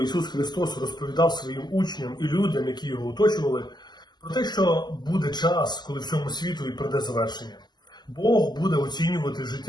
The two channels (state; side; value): late; right; 0.21 ms